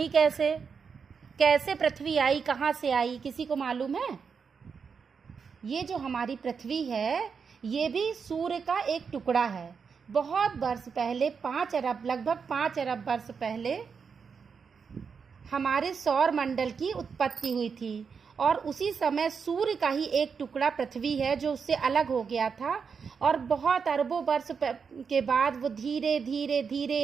कैसे? कैसे पृथ्वी आई, कहाँ से आई? किसी को मालूम है? ये जो हमारी पृथ्वी है ये भी सूर्य का एक टुकड़ा है। बहुत वर्ष पहले, लगभग 5 अरब वर्ष पहले हमारे सौर मंडल की उत्पत्ति हुई थी और उसी समय सूर्य का ही एक टुकड़ा पृथ्वी है जो उससे अलग हो गया था। और बहुत अरबों वर्ष के बाद वो धीरे धीरे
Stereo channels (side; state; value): left; quieter; 5.9 dB